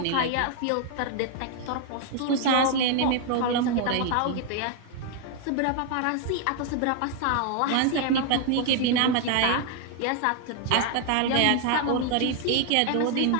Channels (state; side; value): different; both; correlation 0.00